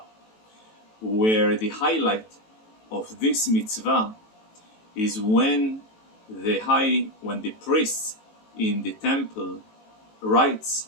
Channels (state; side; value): late; right; 18 ms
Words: where the highlight of this mitzvah is when the priest in the temple